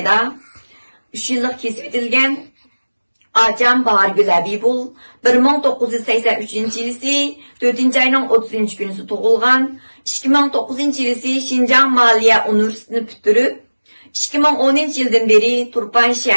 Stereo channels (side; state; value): both; inverted; correlation -1.00